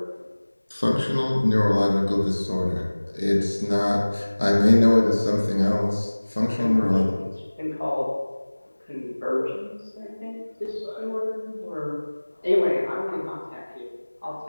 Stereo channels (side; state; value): both; inverted; correlation -1.00